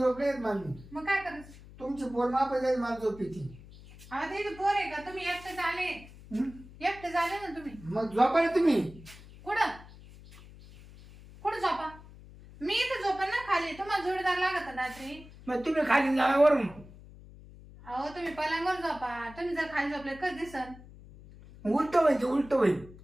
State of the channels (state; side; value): noise; left; hum, 19 dB below the sound